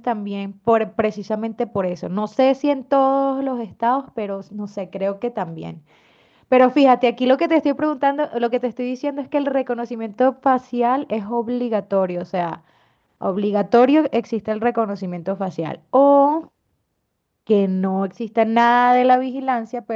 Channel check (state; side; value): identical; both; correlation 1.00